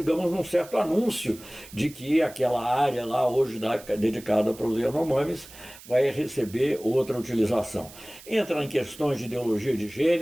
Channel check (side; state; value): right; noise; hiss, 19 dB below the sound